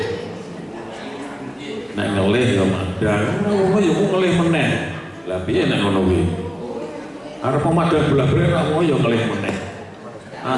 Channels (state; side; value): identical; both; correlation 1.00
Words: Nek ngelih yo madang, wong yo ngelih meneh. Lah piye nek ngono kuwi? Arep pemadang bola-bali ra wong yo ngelih meneh.